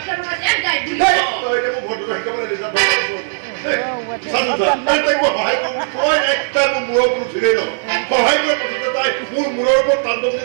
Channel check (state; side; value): silent; left; digital silence